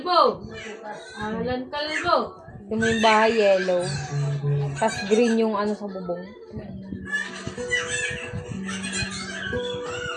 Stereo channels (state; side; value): identical; both; correlation 1.00